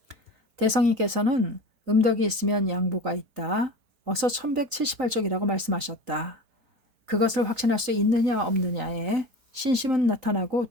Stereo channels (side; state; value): left; late; 3.9 ms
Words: 대성이께서는 음덕이 있으면 양보가 있다. 어서 1178쪽이라고 말씀하셨다. 그것을 확신할 수 있느냐 없느냐에 신심은 나타나고